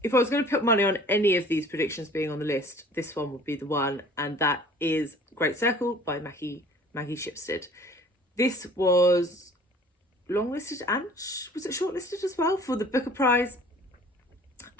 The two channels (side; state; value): both; normal; correlation 0.50